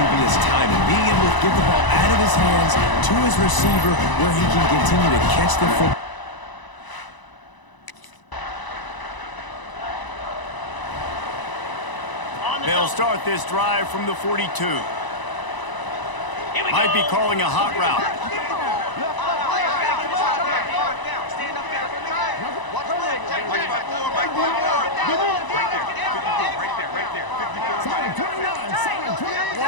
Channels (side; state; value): right; late; 1.0 ms